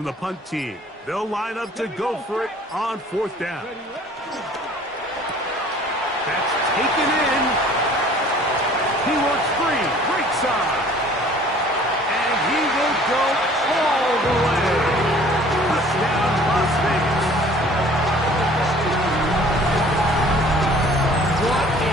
the punt team. They'll line up to go for it on fourth down. That's taken in. He works free. Great side. And he will go all the way. Touchdown, Las Vegas. What a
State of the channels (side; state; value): both; normal; correlation 0.52